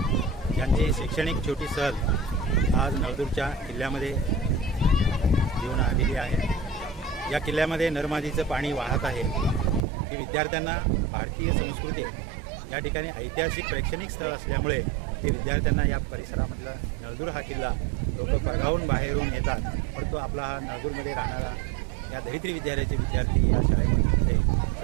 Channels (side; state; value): left; drops out; at 9.8 s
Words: यांची शैक्षणिक छोटी सहल आज नळदुर्गच्या किल्ल्यामध्ये घेऊन आलेली आहे। या किल्ल्यामध्ये नर्मदेचं पाणी वाहत आहे। ही विद्यार्थ्यांना भारतीय संस्कृती या ठिकाणी ऐतिहासिक प्रेक्षणिक स्थळ असल्यामुळे हे विद्यार्थ्यांना या परिसरामधला नळदुर्ग हा किल्ला लोक परगावून बाहेरून येतात, परंतु आपला हा नळदुर्गमध्ये राहणारा या दरित्री विद्यालयाचे विद्यार्थी या शाळेमध्ये